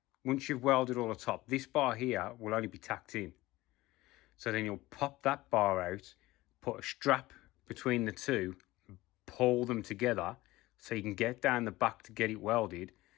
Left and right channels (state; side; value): quieter; right; 18.5 dB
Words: welded all the top, this bar here will only be tacked in. So then you'll pop that bar out, put a strap between the two, pull them together so you can get down the back to get it welded,